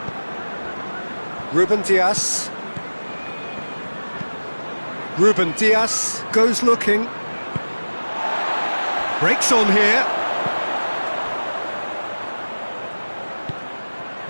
Ruben Dias. Ruben Dias goes looking. Breaks on here.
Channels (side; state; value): both; inverted; correlation -1.00